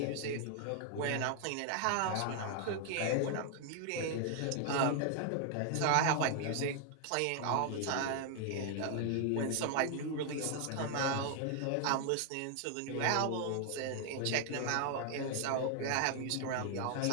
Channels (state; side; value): different; both; correlation 0.00